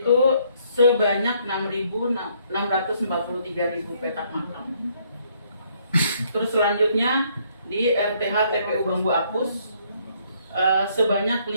sebanyak 6.643.000 petak makam. Terus selanjutnya di RTH TPU Bambu Apus sebanyak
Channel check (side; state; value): both; inverted; correlation -0.67